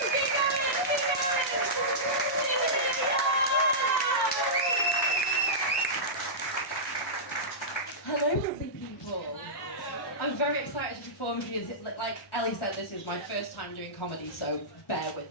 Hello, lovely people. I'm very excited to perform because, like Ellie said, this is my first time doing comedy, so bear with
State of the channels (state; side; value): normal; both; correlation -0.15